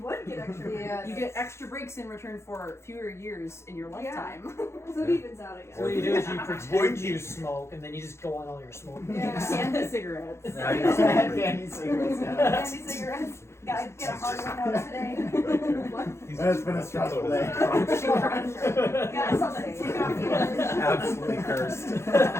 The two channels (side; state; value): right; late; 0.13 ms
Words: get extra breaks. You get extra breaks in return for fewer years in your lifetime. So it evens out again. So what you do is you pretend you smoke, and then you just go on all your smoking. Yeah. Candy cigarettes. Candy cigarettes. Candy cigarettes. Gotta get a hard one out today. What? It's been a stressful day. Got something to take off the edge. Absolutely cursed.